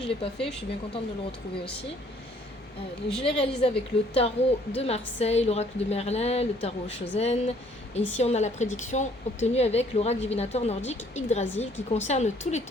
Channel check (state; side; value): normal; both; correlation 0.61